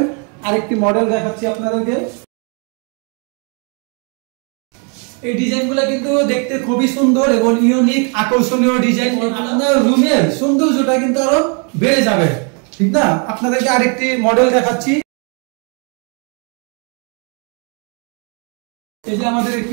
আরেকটি মডেল দেখাচ্ছি আপনাদেরকে। এই ডিজাইনগুলো কিন্তু দেখতে খুবই সুন্দর এবং ইউনিক, আকর্ষণীয় ডিজাইন। আপনার রুমের সৌন্দর্যটা কিন্তু আরো বেড়ে যাবে, ঠিক না? আপনাদেরকে আরেকটি মডেল দেখাচ্ছি। এই যে আমাদের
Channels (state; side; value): quieter; left; 37.6 dB